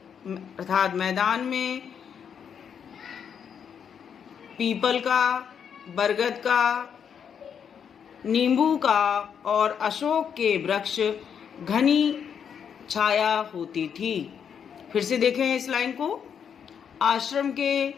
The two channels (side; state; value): right; quieter; 7.6 dB